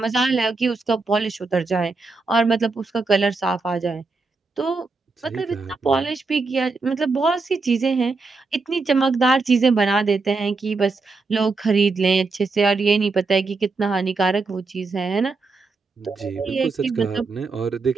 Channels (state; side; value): quieter; left; 4.0 dB